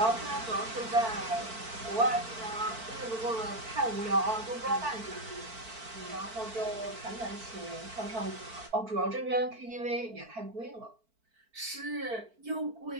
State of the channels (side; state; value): left; late; 4.5 ms